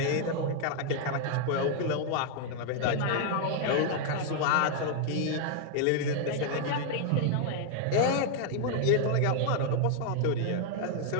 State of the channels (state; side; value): different; both; correlation 0.00